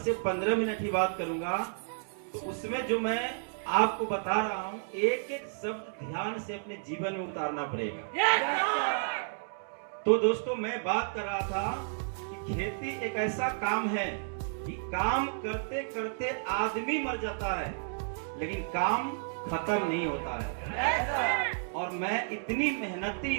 से 15 मिनट ही बात करूंगा, तो उसमें जो मैं आपको बता रहा हूं एक एक शब्द ध्यान से अपने जीवन में उतारना पड़ेगा। तो दोस्तों मैं बात कर रहा था कि खेती एक ऐसा काम है कि काम करते करते आदमी मर जाता है लेकिन काम खत्म नहीं होता है। और मैं इतनी मेहनती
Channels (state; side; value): silent; left; digital silence